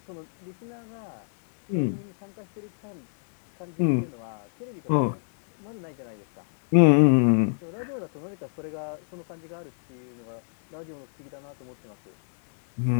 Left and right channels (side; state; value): right; silent; digital silence